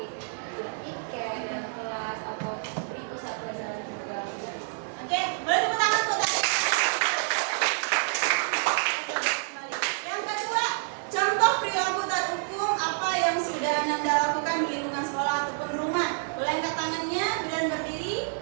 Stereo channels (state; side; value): silent; left; 59 dB below the other